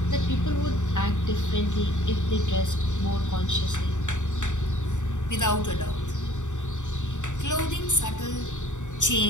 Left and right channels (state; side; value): late; right; 0.85 ms